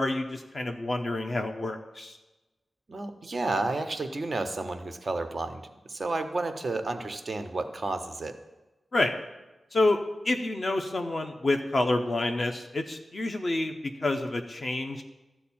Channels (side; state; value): both; normal; correlation 0.92